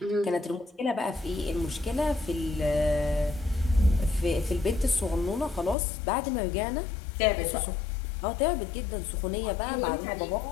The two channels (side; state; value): right; drops out; at 5.8 s